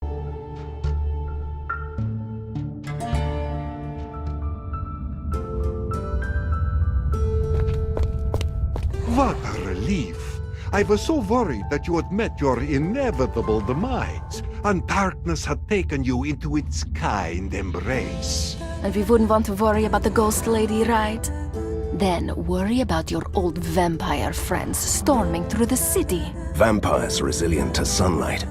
What a relief. I was so worried that you had met your inevitable demise, and darkness had taken you into its kind embrace. And we wouldn't want to worry about the ghost lady, right? Then worry about your old vampire friends storming through the city. Vampires resilient to sunlight,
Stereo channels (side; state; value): both; identical; correlation 1.00